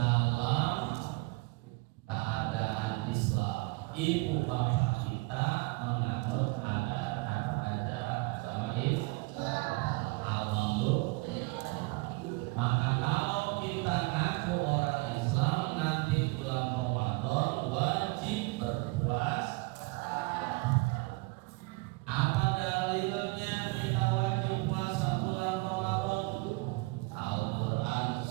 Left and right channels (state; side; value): quieter; left; 25.8 dB